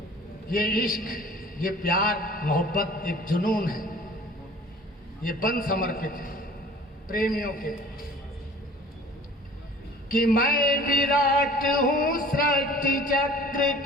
ये इश्क, ये प्यार मोहब्बत एक जुनून है, ये बंद समर्पित है प्रेमियों के। कि मैं विराट हूँ सृष्टि चक्र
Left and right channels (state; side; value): normal; both; correlation 0.47